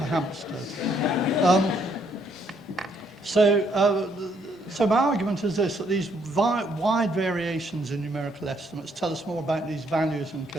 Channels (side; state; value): both; normal; correlation 0.70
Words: Hampstead. So my argument is this, that these wide variations in numerical estimates tell us more about these values and